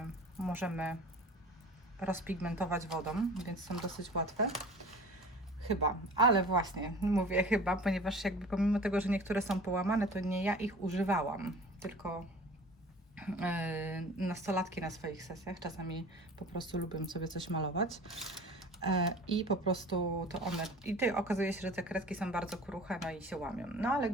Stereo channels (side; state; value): both; normal; correlation 0.42